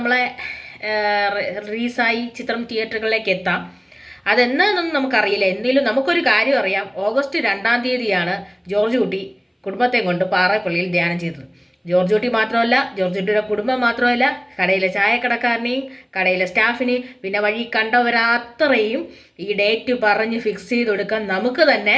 റിലീസായി ചിത്രം തിയേറ്ററുകളിലേക്ക് എത്താം. അതെന്നൊന്നും നമുക്കറിയില്ല. എന്തെങ്കിലും നമുക്കൊരു കാര്യം അറിയാം, ഓഗസ്റ്റ് 2-ാം തീയതിയാണ് ജോർജ് കുട്ടി കുടുംബത്തെ കൊണ്ട് പാറായിപ്പള്ളിയിൽ ധ്യാനം ചെയ്തത്. ജോർജ് കുട്ടി മാത്രമല്ല, ജോർജ് കുട്ടിയുടെ കുടുംബം മാത്രമല്ല, കടയിലെ ചായക്കടക്കാരനെയും കടയിലെ സ്റ്റാഫിനെയും പിന്നെ വഴി കണ്ടവരത്രയും ഈ ഡേറ്റ് പറഞ്ഞ് ഫിക്സ് ചെയ്ത് കൊടുക്കാൻ നമുക്ക് തന്നെ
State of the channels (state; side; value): identical; both; correlation 1.00